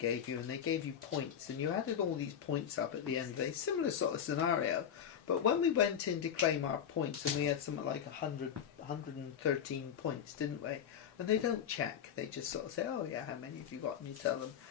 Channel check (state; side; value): quieter; right; 8.6 dB